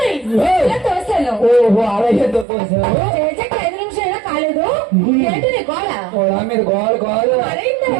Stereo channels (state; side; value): drops out; left; at 2.5 s